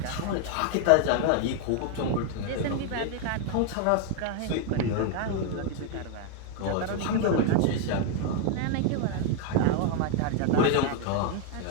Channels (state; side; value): different; both; correlation 0.00